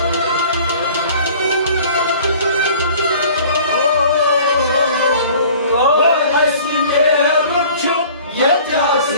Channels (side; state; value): both; inverted; correlation -0.48